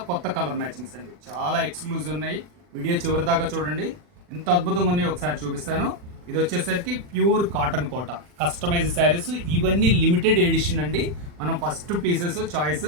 కొత్త కలర్ మ్యాచింగ్స్ అండి, చాలా ఎక్స్క్లూజివ్ ఉన్నాయి. వీడియో చివరి దాకా చూడండి, ఎంత అద్భుతంగా ఉన్నాయో ఒకసారి చూపిస్తాను. ఇది వచ్చేసరికి pure cotton Kota customize saris. ఇవన్నీ లిమిటెడ్ ఎడిషన్ అండి. మనం ఫస్ట్ పీసెస్ చాయిస్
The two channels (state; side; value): late; left; 40 ms